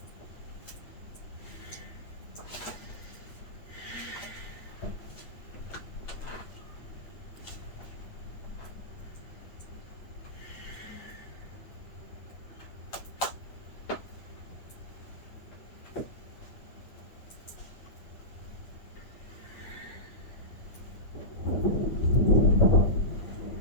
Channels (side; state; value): right; late; 9.1 ms